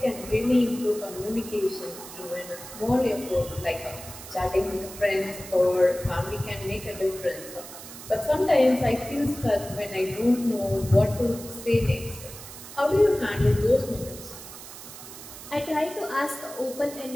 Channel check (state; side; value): noise; right; hiss, 14 dB below the sound